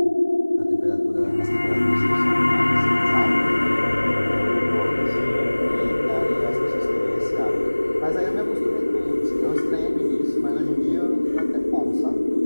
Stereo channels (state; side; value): inverted; both; correlation -1.00